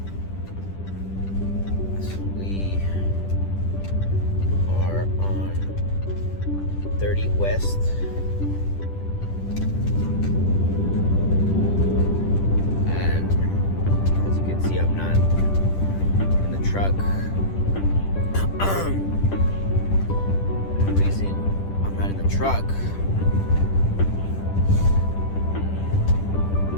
So we are on 30 West. And as you can see, I'm not in the truck. The reason I'm not in the truck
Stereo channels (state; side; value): late; right; 10 ms